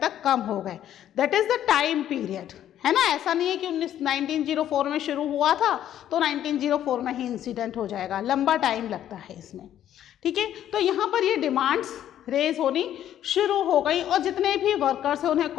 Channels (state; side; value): quieter; right; 11.2 dB